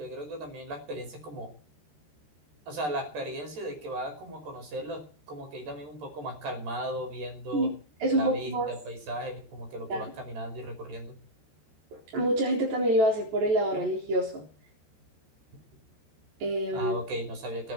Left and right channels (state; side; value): late; left; 13 ms